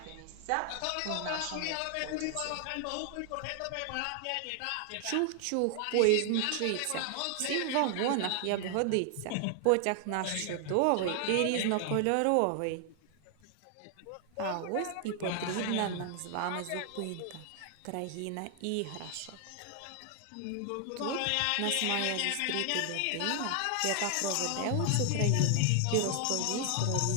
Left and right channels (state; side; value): different; both; correlation 0.00